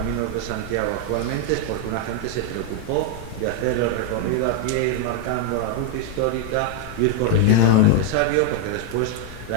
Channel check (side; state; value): both; different; correlation 0.01